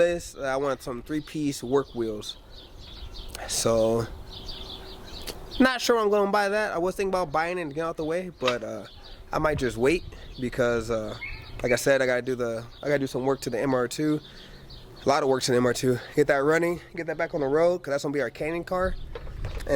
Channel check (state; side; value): identical; both; correlation 1.00